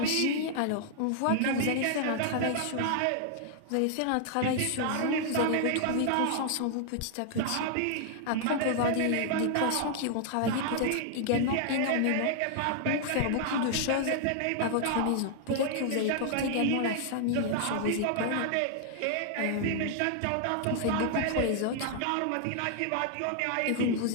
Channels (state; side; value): different; both; correlation 0.00